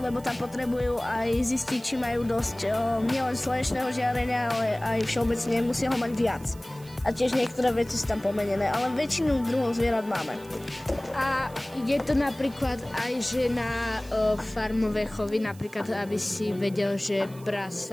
tam potrebujú aj zistiť, či majú dosť nielen slnečného žiarenia, ale aj všeobecne musia ho mať viac. A tiež niektoré veci sú tam pomenené, ale väčšinu druhov zvierat máme. A je to napríklad aj, že na farmové chovy, napríklad, aby si vedel, že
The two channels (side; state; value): right; noise; hiss, 23 dB below the sound